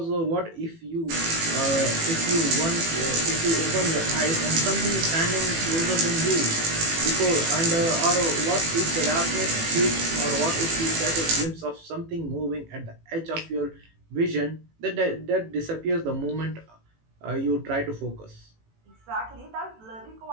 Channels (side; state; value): left; late; 18 ms